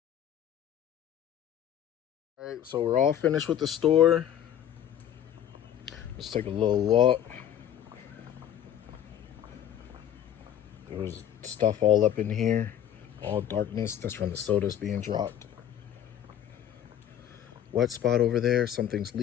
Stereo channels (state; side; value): quieter; right; 10.3 dB